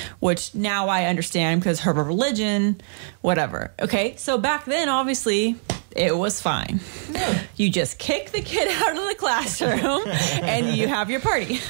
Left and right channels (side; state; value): left; silent; digital silence